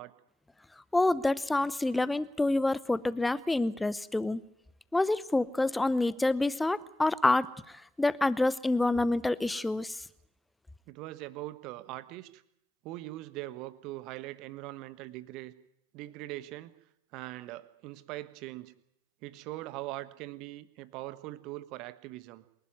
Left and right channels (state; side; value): normal; both; correlation 0.93